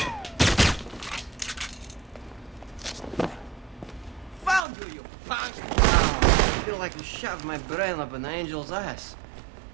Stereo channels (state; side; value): drops out; left; at 4.6 s